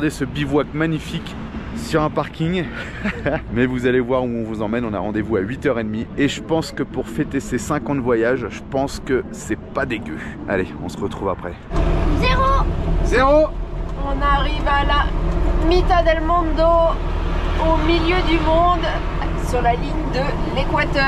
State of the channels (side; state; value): both; identical; correlation 1.00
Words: ce bivouac magnifique sur un parking. Mais vous allez voir où on vous emmène. On a rendez-vous à 8h30 et je pense que pour fêter ces 5 ans de voyage, je pense que c'est pas dégueu. Allez, on se retrouve après. 0. On arrive à la Mitad del Mundo, au milieu du monde, sur la ligne de